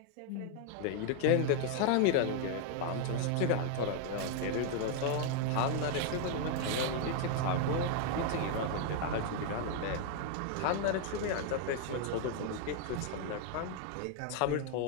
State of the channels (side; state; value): both; different; correlation 0.00